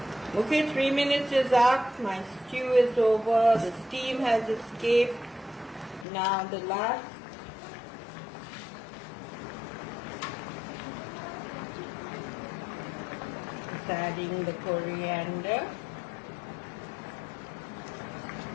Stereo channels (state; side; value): drops out; right; at 6.1 s